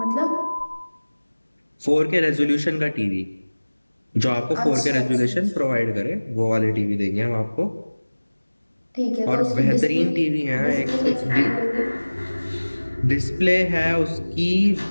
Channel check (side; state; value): both; inverted; correlation -1.00